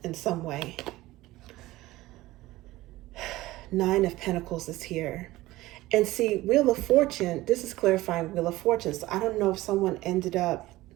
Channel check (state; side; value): quieter; left; 17.8 dB